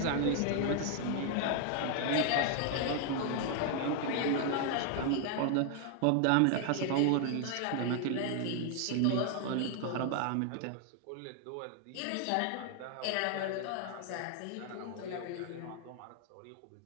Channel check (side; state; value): both; different; correlation 0.00